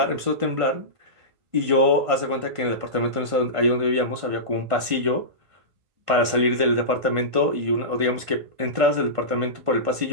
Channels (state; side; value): late; left; 1.5 ms